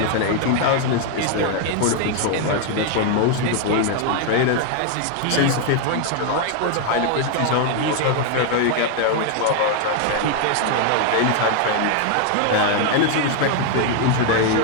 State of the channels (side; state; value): both; different; correlation 0.00